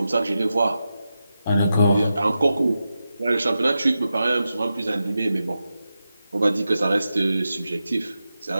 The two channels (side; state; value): both; inverted; correlation -0.90